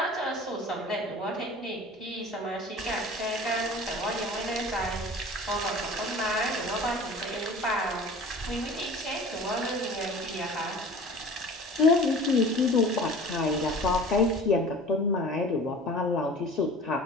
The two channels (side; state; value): both; normal; correlation 0.42